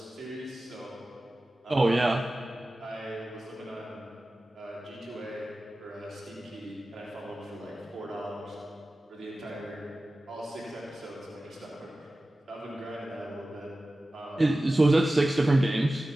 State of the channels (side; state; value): both; normal; correlation 0.95